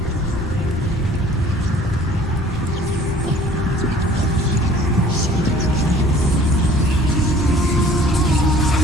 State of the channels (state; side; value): normal; both; correlation 0.51